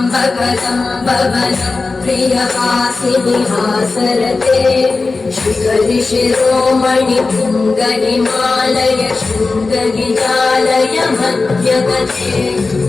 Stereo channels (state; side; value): quieter; right; 3.8 dB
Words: कदम्ब वदं प्रियवासिनि हासरते शिखरि शिरोमणि पुङ्गनिमालय शृङ्गनिजालय मध्यगते